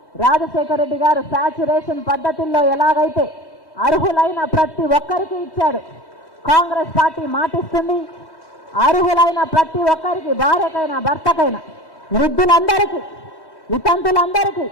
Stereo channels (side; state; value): right; late; 3.1 ms